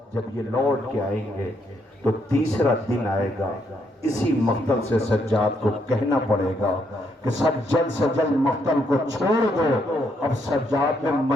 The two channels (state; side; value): normal; both; correlation 0.75